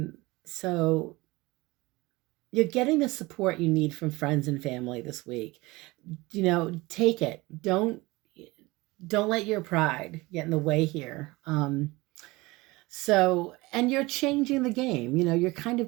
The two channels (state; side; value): quieter; left; 21.9 dB